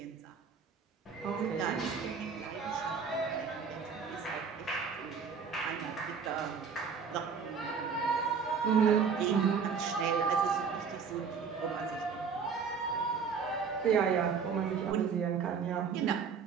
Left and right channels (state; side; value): quieter; left; 6.0 dB